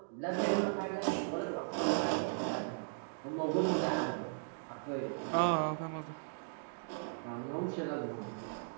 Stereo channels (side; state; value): left; silent; digital silence